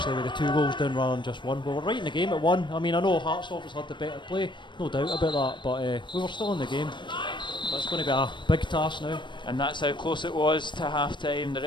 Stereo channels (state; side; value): late; right; 0.23 ms